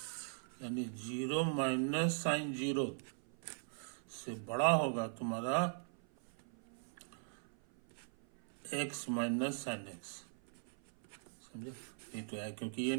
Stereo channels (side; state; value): left; silent; 51 dB below the other